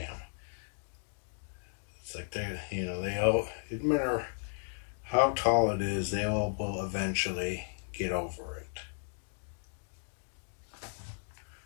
It's like they all, no matter how tall it is, they all will eventually get over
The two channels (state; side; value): silent; right; digital silence